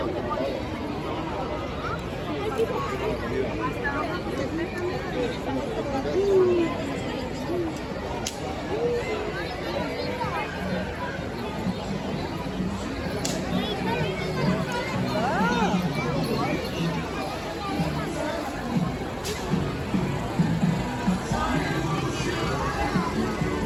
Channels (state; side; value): identical; both; correlation 1.00